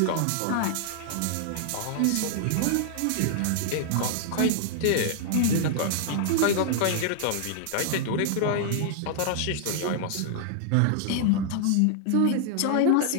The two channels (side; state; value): both; different; correlation -0.01